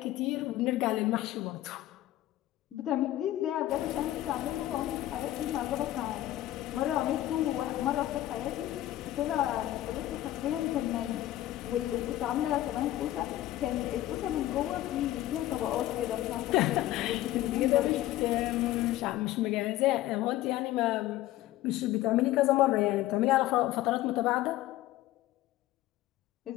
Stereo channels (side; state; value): right; quieter; 14.8 dB